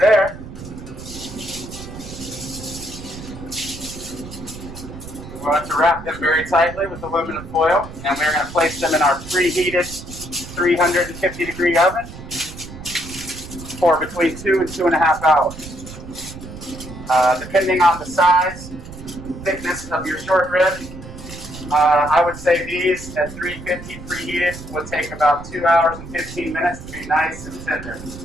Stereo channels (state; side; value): noise; right; rumble, 13 dB below the sound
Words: we want to wrap them very tightly with aluminum foil, and we're going to place them in our preheated 350-degree oven for between 2 and 2.5 hours. Depending on the size, thickness of your short rib, I would say these at 350 preheated would take about 2 hours and 15 minutes to be nice and tender.